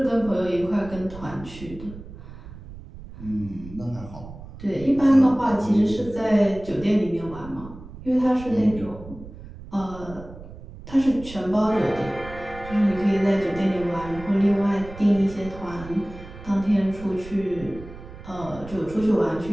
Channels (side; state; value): right; noise; rumble, 15 dB below the sound